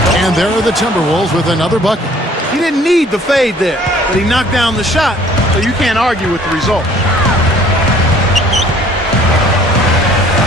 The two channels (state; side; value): normal; both; correlation 0.55